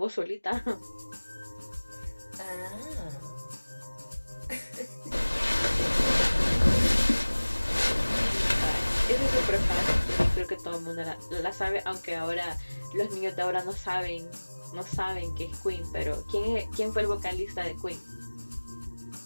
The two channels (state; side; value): inverted; both; correlation -1.00